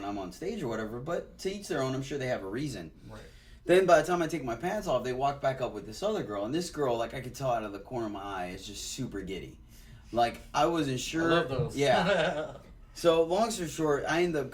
I'm on stage or whatever, but to each their own. I'm sure they have a reason. Right. Then by the time I take my pants off, they walk back up with this other girl, and this girl, I could tell out of the corner of my eye, is just super giddy. I wasn't sure. I love those. Yeah. So long story short, I end up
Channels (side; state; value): both; identical; correlation 1.00